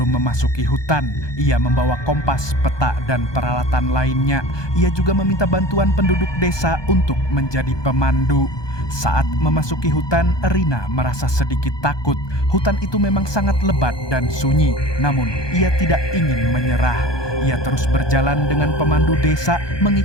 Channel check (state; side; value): late; right; 1.2 ms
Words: memasuki hutan. Ia membawa kompas, peta, dan peralatan lainnya. Ia juga meminta bantuan penduduk desa untuk menjadi pemandu. Saat memasuki hutan, Rina merasa sedikit takut. Hutan itu memang sangat lebat dan sunyi, namun ia tidak ingin menyerah. Ia terus berjalan dengan pemandu desa